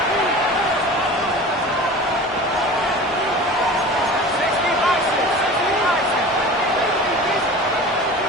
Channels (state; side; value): normal; both; correlation 0.37